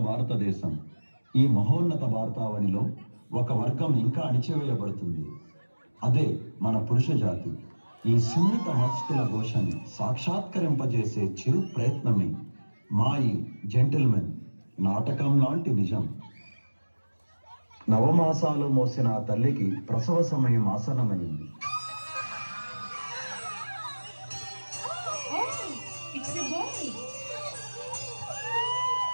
భారతదేశం. ఈ మహోన్నత భారతావనిలో ఒక వర్గం ఇంకా అణిచివేయబడుతుంది. అదే మన పురుష జాతి. ఈ సున్నిత మనస్కుల ఘోషని సాక్షాత్కరింపజేసే చిరు ప్రయత్నమే మా ఈ జెంటిల్మెన్ నాటకం లాంటి నిజం. నవమాసాలు మోసిన ఆ తల్లికి ప్రసవ సమయం ఆసన్నమైంది.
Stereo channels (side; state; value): both; inverted; correlation -1.00